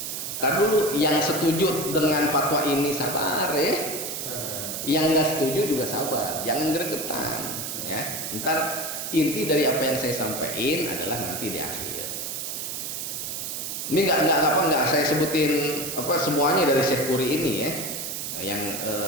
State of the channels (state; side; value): noise; right; hiss, 5 dB below the sound